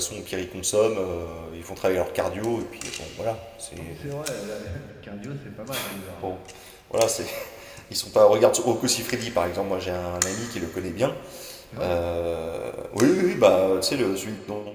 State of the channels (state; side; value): identical; both; correlation 1.00